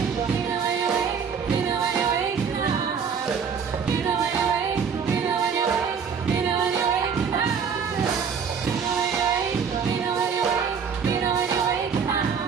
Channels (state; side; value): quieter; left; 6.5 dB